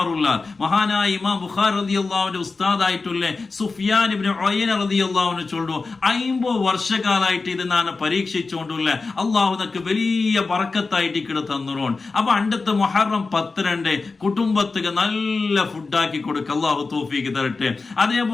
മഹാനായ ഇമാം ബുഖാരി റളിയല്ലാഹുവിന്റെ ഉസ്താദായിട്ടുള്ള സുഫിയാൻ ഇബ്നു ഉയൈന റളിയല്ലാഹു അൻഹു ചൊല്ലു 50 വർഷക്കാലായിട്ട് ഇത് ഞാൻ പരീക്ഷിച്ചുകൊണ്ടുള്ള അല്ലാഹു നമുക്ക് വലിയ ബറക്കത്തായിട്ട് ഇക്കടെ തന്നുറോൺ. അപ്പൊ അണ്ടത്തെ മുഹറം 10 കുടുംബത്തിക്ക് നല്ല ഫുഡാക്കി കൊടുക്ക അല്ലാഹു തൗഫീഖ് തരട്ടെ.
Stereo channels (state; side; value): quieter; right; 4.0 dB